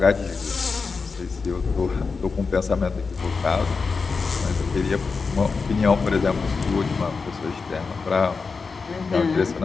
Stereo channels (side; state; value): right; quieter; 4.7 dB